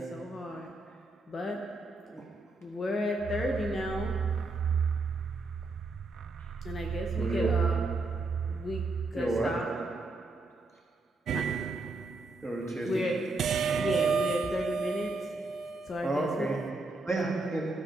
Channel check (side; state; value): left; quieter; 3.1 dB